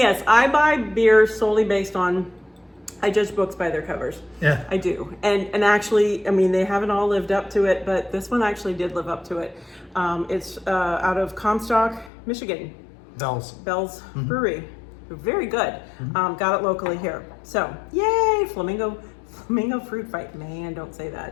I buy beer solely based on, I judge books by their covers. Yeah. I do. And actually, I mean, they haven't all lived up to it, but this one actually did live up to it. It's out of Comstock, Michigan. Bell's Brewery. Very good. Got it locally here. So, yay, Flamingo Fruit Fight. Man, don't say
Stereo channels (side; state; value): right; drops out; at 12.1 s